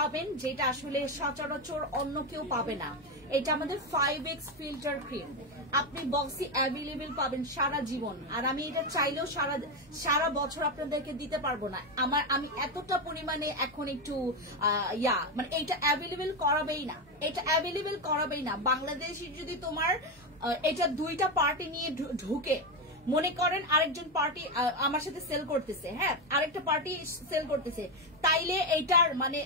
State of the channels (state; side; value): normal; both; correlation 0.10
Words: যেটা আসলে সচরাচর অন্য কেউ পাবে না। এটা আমাদের 5x ফিল্টার ক্রিম, আপনি বক্সে অ্যাভেলেবেল পাবেন সারা জীবন, আর আমি এটা চাইলেও সারা বছর আপনাদেরকে দিতে পারবো না। আমি এতটা পরিমাণে এখন একটু মানে এটা অ্যাভেলেবেল করাবেই না। বাংলাদেশে যদি তোমার এটা 2টা পার্টি নিয়ে ঢুকে মনে করেন আরেকজন পার্টি আমার সাথে সেল করতেছে, হ্যাঁ আরেকটা পার্টি সেল করতেছে, তাইলে